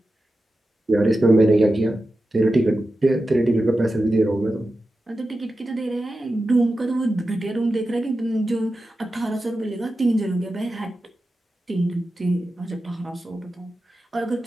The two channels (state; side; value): normal; both; correlation 0.92